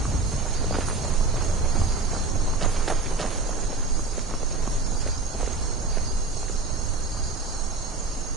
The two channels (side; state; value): left; quieter; 3.6 dB